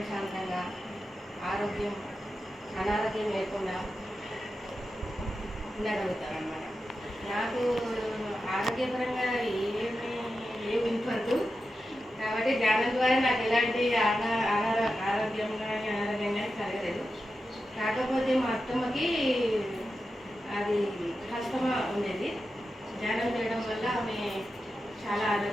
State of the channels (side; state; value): both; normal; correlation 0.90